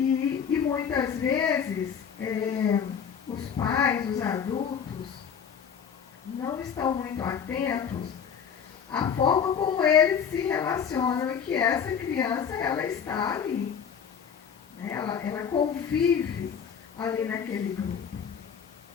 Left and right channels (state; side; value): quieter; right; 7.4 dB